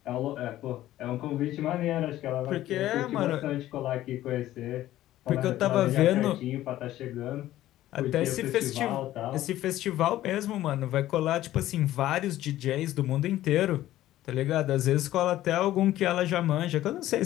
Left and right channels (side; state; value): right; quieter; 14.2 dB